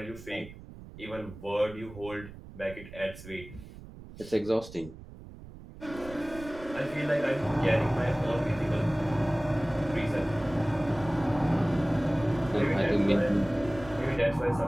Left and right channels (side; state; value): right; noise; rumble, 16 dB below the sound